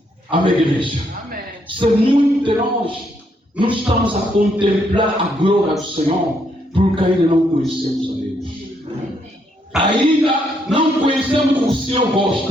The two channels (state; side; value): normal; both; correlation 0.74